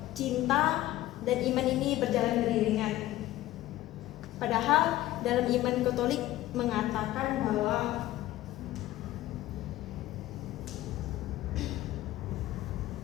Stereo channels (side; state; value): right; quieter; 15.4 dB